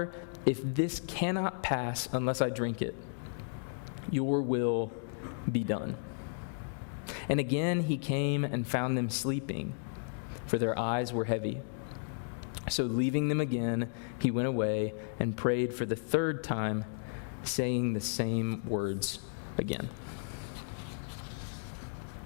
if this cannot pass unless I drink it, your will be done. And again he came and found them sleeping, for their eyes were heavy. So leaving them again, he went away and prayed for the 3rd time, saying the same words again.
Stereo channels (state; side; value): silent; right; digital silence